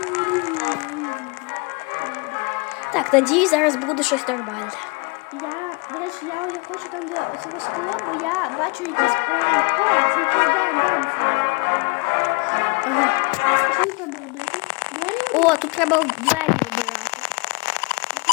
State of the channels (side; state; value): right; quieter; 31.2 dB